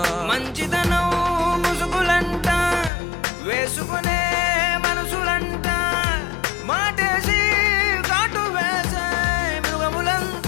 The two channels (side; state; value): right; drops out; at 2.9 s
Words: మంచితనం ముసుగులంట వేసుకునే మనసులంట మాటేసి కాటు వేసే